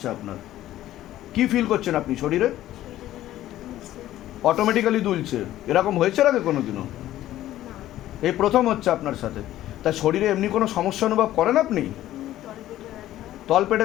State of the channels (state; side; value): quieter; right; 13.8 dB